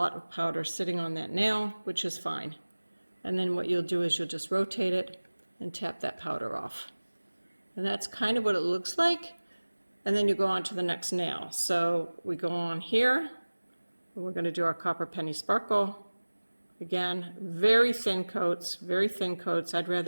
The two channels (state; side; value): inverted; both; correlation -1.00